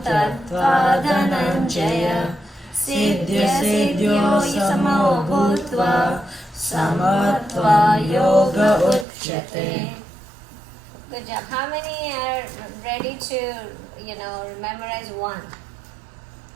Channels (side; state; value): left; drops out; at 9.1 s